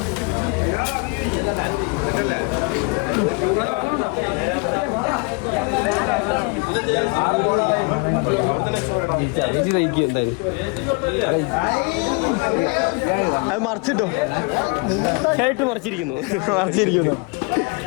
അത് മറിച്ചിട്ടോ മറിച്ചിരിക്കുന്നു.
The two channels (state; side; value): quieter; right; 30.9 dB